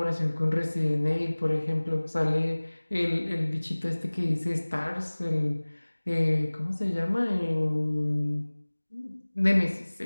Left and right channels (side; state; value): both; inverted; correlation -1.00